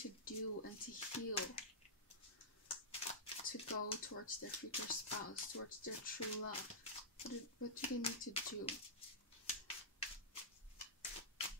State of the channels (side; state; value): both; normal; correlation -0.14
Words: do and to heal to go towards their future spouse, towards their true love? What do they need to do?